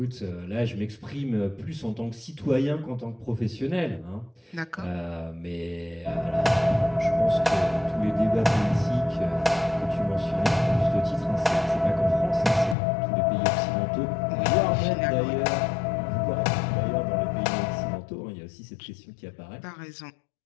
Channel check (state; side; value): drops out; right; at 12.8 s